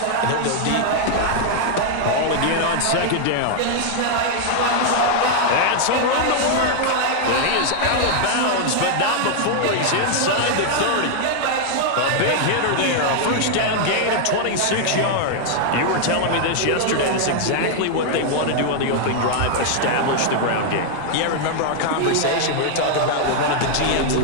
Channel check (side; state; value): both; different; correlation 0.00